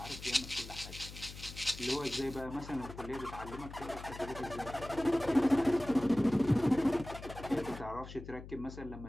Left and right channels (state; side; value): noise; left; hum, 13 dB below the sound